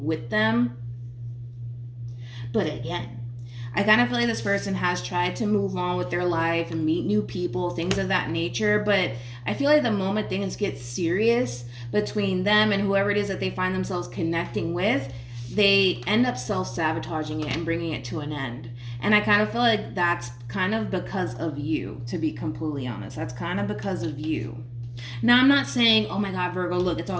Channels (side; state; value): both; identical; correlation 1.00